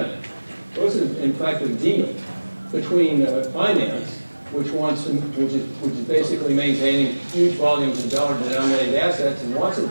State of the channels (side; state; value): both; inverted; correlation -1.00